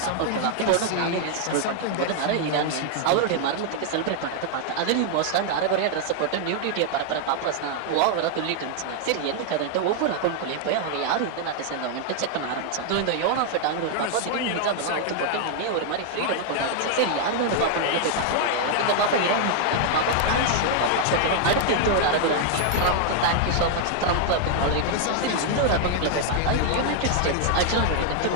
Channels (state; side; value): different; both; correlation 0.00